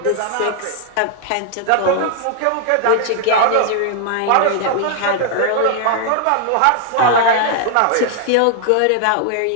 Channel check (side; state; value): both; different; correlation 0.00